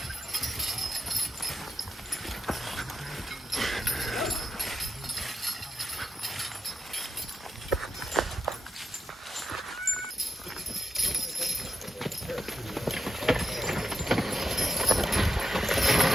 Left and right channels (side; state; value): both; normal; correlation 0.87